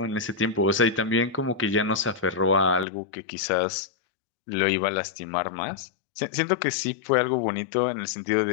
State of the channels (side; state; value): right; drops out; at 2.9 s